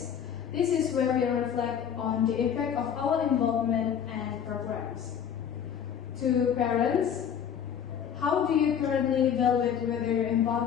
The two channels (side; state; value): right; quieter; 8.4 dB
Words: This is where we reflect on the impact of our involvement and programs. To parents, how do you currently evaluate whether your